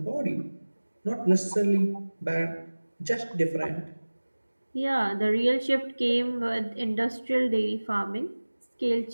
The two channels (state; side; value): inverted; both; correlation -1.00